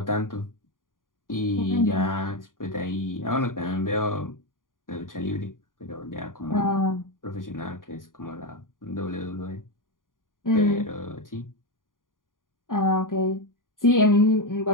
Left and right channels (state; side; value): late; right; 0.89 ms